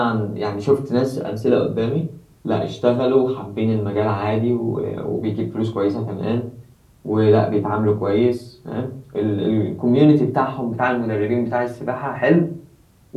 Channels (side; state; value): both; identical; correlation 1.00